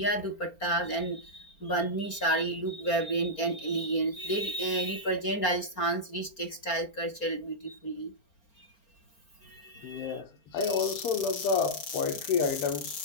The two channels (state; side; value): late; right; 4.4 ms